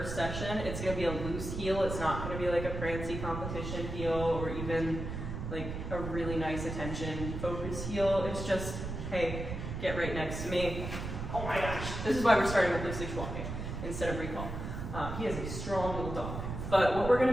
session, it's going to be a loose heel. It's not going to be like a prancy competition heel or even like a really nice attention focused heel. It's just, hey, get right next to me. Oh my gosh. This is why we're starting with loose leash walking instead of recall. He is a strong little dog. But what we're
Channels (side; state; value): right; noise; rumble, 6 dB below the sound